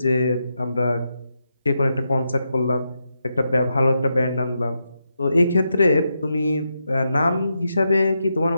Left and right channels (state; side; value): inverted; both; correlation -0.85